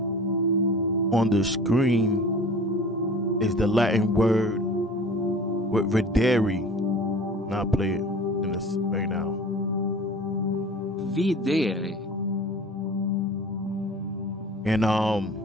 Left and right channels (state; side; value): normal; both; correlation 0.42